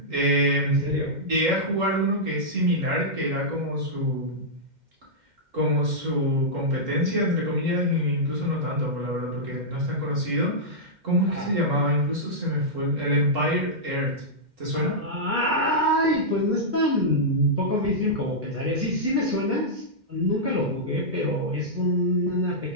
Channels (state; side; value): late; left; 2.1 ms